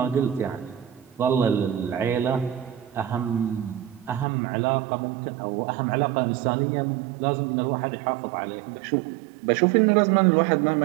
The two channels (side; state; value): left; drops out; at 4.2 s